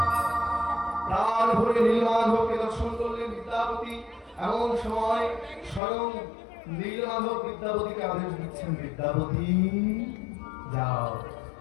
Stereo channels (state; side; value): drops out; right; at 5.8 s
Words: প্রাণ ভরে নীলমাধবকে দর্শন করলেন বিদ্যাপতি। এমন সময় স্বয়ং নীলমাধব বিদ্যাপতিকে আদেশ দিচ্ছেন, বিদ্যাপতি যাও,